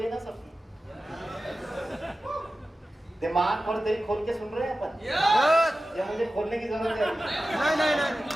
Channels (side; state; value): both; normal; correlation 0.94